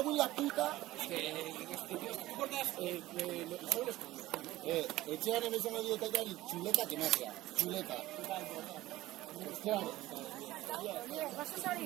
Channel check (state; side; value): quieter; left; 16.8 dB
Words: en la puta. Etxean emezan medio takari, chuleta que magia, chuleta. Claro.